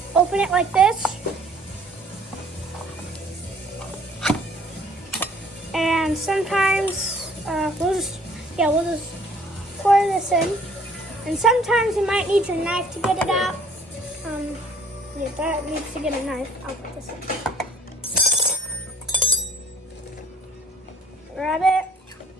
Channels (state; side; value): normal; both; correlation 0.57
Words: open it like this. And sometimes we'll just pour this in. And sometimes you might need your knife to get it out. That needs to get a knife. I'll put this in. Grab it.